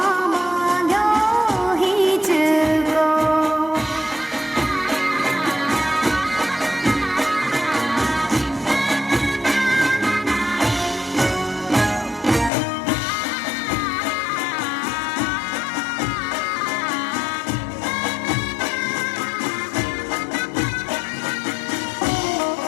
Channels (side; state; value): right; drops out; at 12.5 s